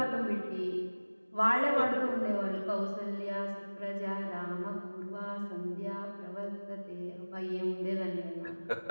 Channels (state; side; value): inverted; both; correlation -1.00